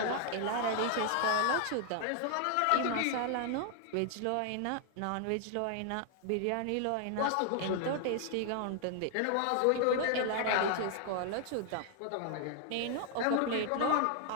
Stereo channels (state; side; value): different; both; correlation 0.00